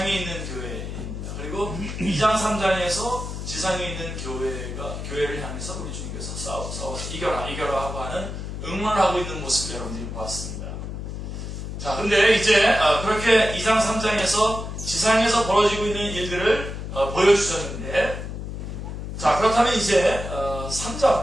있는 교회입니다. 그리고 2장 3장에서 지상에 있는 교회를 향해서 우리 주님께서 싸워서 이겨라 하고 하는 응원을 하고 있는 모습을 여러분들이 보았습니다. 자, 근데 이제 그렇게 2장 3장에서 지상에서 벌어지고 있는 일들을 보여주셨는데, 자, 그렇다면 이제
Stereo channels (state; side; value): noise; left; hum, 7 dB below the sound